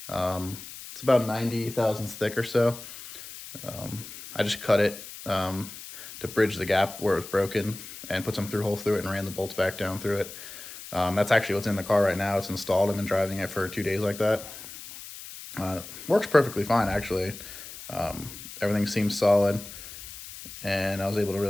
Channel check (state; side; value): noise; left; hiss, 13 dB below the sound